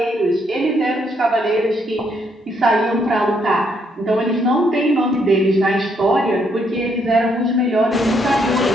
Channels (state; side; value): normal; both; correlation 0.73